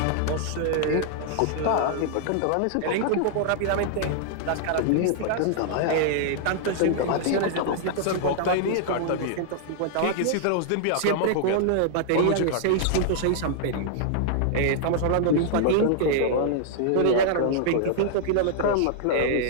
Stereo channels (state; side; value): different; both; correlation -0.01